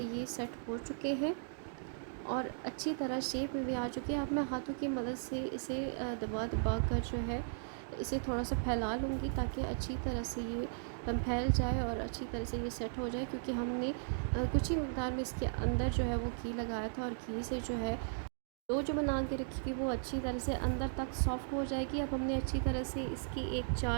ये सेट हो चुके हैं और अच्छी तरह शेप में भी आ चुके हैं। अब मैं हाथों की मदद से इसे दबा दबा कर जो है इसे थोड़ा सा फैला लूँगी ताकि अच्छी तरह से ये फैल जाए और अच्छी तरह से ये सेट हो जाए, क्योंकि हमने कुछ ही मकदार में इसके अंदर जो है वो घी लगाया था और घी से जो है डो जो बना के रखी थी वो अच्छी तरह से अंदर तक सॉफ्ट हो जाएगी। अब हमने अच्छी तरह से इसकी एक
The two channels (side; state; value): left; silent; digital silence